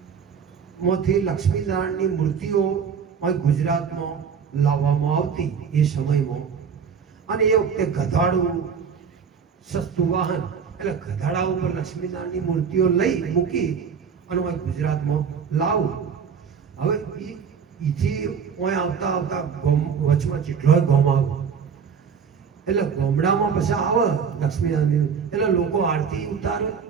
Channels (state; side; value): quieter; left; 6.6 dB